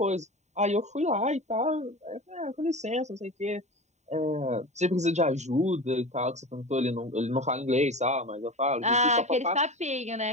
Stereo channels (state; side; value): late; left; 0.33 ms